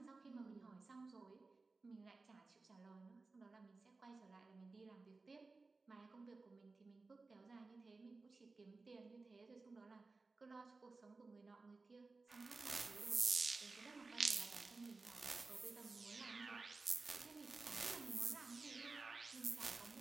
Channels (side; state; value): left; quieter; 3.7 dB